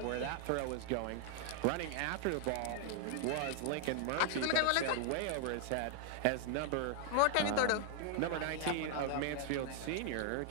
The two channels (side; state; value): both; different; correlation 0.00